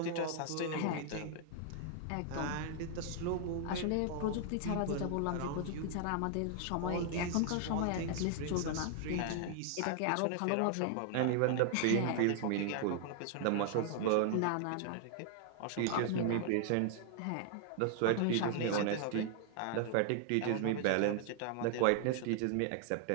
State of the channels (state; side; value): different; both; correlation 0.00